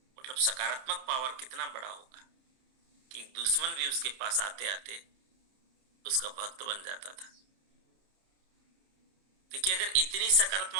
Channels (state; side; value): late; left; 30 ms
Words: मतलब सकारात्मक पावर कितना बड़ा होगा कि दुश्मन भी उसके पास आते आते उसका भक्त बन जाता था। देखिए अगर इतनी